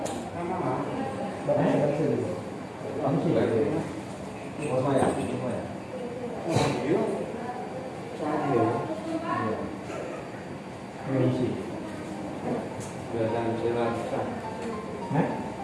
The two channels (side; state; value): both; identical; correlation 1.00